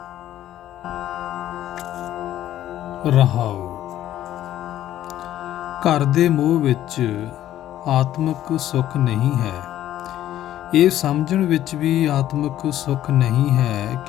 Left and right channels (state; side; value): quieter; right; 12.6 dB